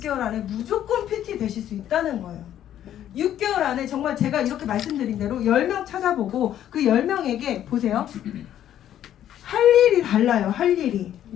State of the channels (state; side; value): quieter; right; 11.2 dB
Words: 안에 무조건 PT 되실 수 있다는 거예요. 6개월 안에 정말 제가 이렇게 말씀드린 대로 10명 찾아보고 그 10명에게 보세요. 할 일이 달라요. 할 일이.